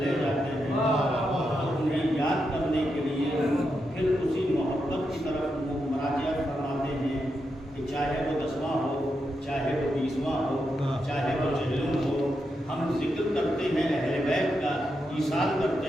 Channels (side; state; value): both; normal; correlation 0.85